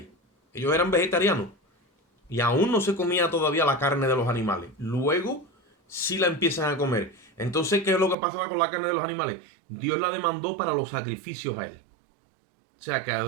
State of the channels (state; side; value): drops out; left; at 8.2 s